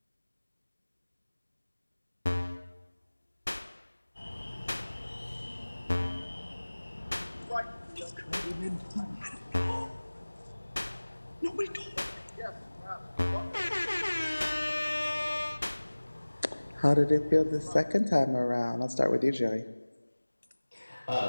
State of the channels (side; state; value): both; inverted; correlation -1.00